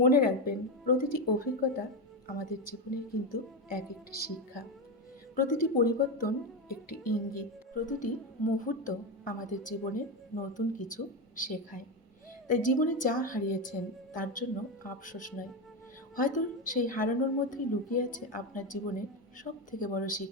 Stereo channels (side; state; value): both; normal; correlation 0.13